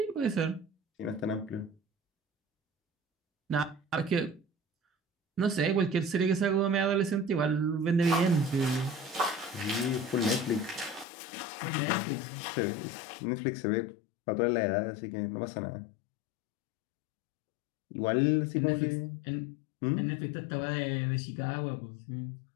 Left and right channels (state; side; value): drops out; right; at 11.1 s